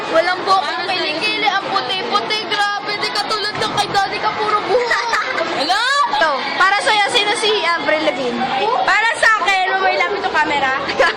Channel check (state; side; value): identical; both; correlation 1.00